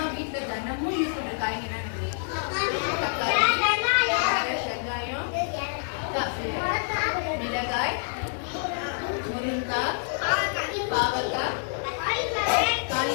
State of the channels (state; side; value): silent; right; 60 dB below the other